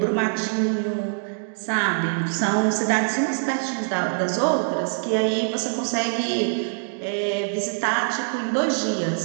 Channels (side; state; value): left; silent; digital silence